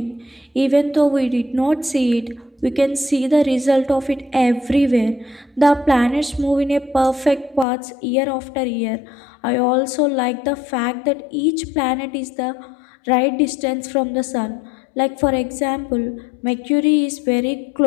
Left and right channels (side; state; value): right; drops out; at 7.7 s